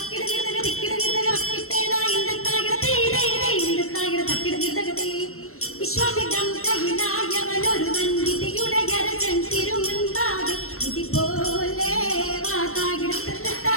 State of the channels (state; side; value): late; right; 0.62 ms